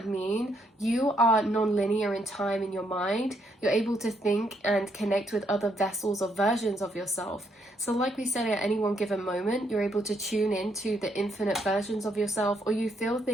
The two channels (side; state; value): both; normal; correlation 0.74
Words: mean? You are non-linear in time in your mind. You're able to think and connect with other vessels or versions of yourself. So like we said, at any one given moment, you're able to tune into the infinite versions of yourself, or you feel